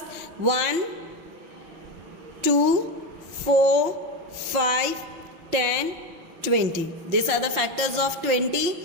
1 2 4 5 10 20. These are the factors of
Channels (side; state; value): left; late; 5.6 ms